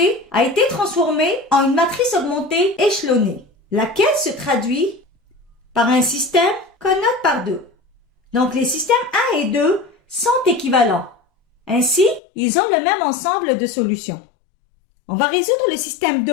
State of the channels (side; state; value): right; drops out; at 12.2 s